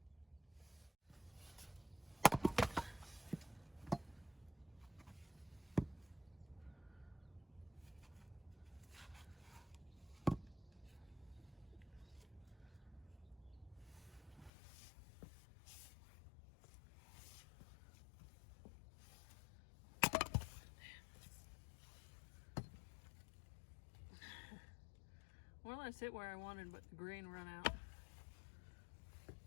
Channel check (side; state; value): right; drops out; at 14.5 s